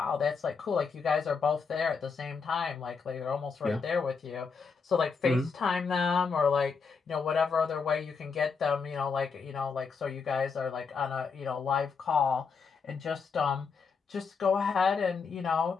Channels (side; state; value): right; quieter; 5.3 dB